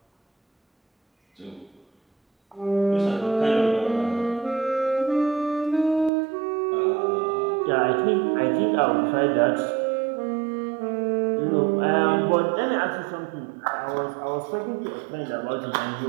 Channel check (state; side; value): drops out; left; at 6.1 s